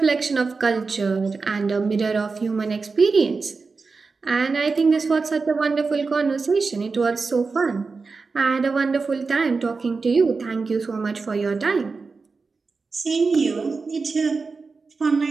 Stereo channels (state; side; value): quieter; left; 4.4 dB